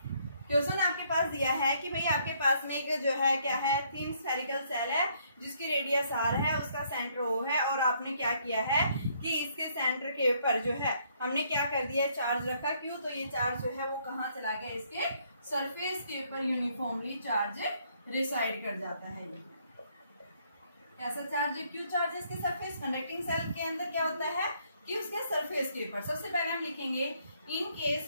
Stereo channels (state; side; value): inverted; both; correlation -0.68